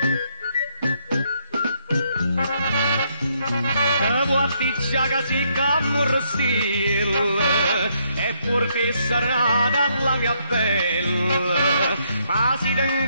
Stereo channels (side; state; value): both; inverted; correlation -0.73